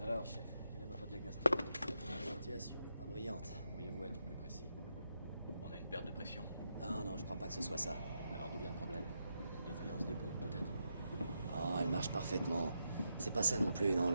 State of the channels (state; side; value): inverted; both; correlation -0.84